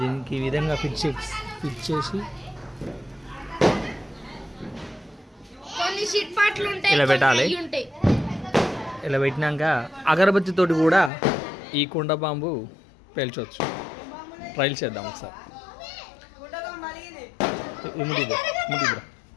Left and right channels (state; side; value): drops out; right; at 11.1 s